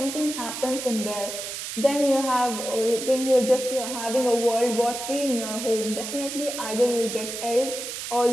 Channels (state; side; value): noise; right; hiss, 7 dB below the sound